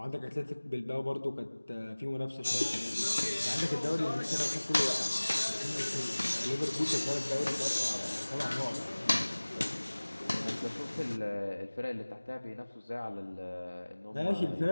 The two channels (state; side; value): inverted; both; correlation -1.00